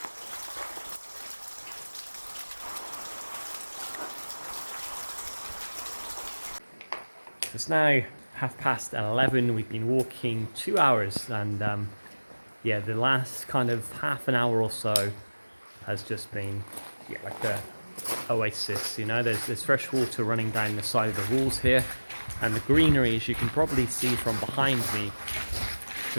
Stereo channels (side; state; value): both; inverted; correlation -1.00